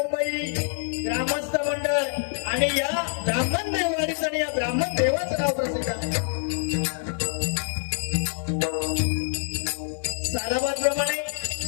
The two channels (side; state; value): right; silent; digital silence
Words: ग्रामस्थ मंडळ आणि या ब्राह्मण देववाडीचं आणि या ब्राह्मण देवाचं नाव प्रसिद्ध आहे. सालाबादप्रमाणे